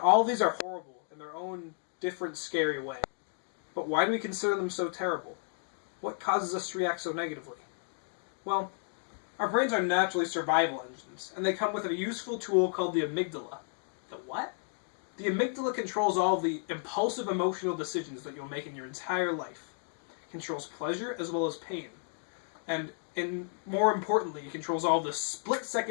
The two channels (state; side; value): silent; right; 56 dB below the other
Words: all of these are horrible in their own different, scary way. But why do we consider them so terrible? What causes us to react so negatively? Well, our brains are naturally survival engines, and they come with a useful tool called the amygdala. The what? The amygdala controls all of the impulsive emotional decisions that you'll make in your entire life. It controls pleasure as well as pain. And more importantly, it controls all the